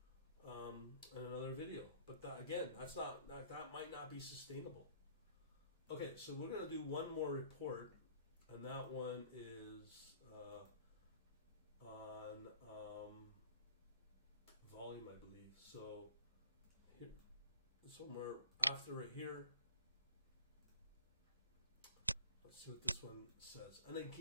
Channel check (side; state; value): both; inverted; correlation -0.53